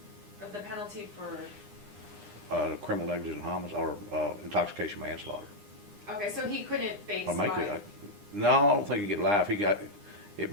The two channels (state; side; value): late; left; 9.8 ms